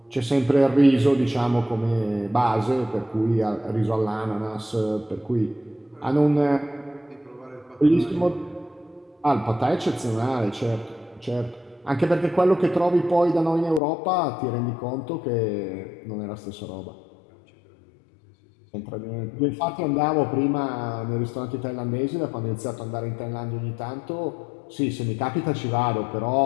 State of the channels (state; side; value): drops out; right; at 13.8 s